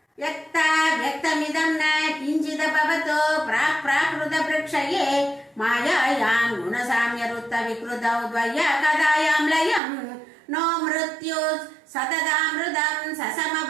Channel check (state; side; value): drops out; left; at 9.8 s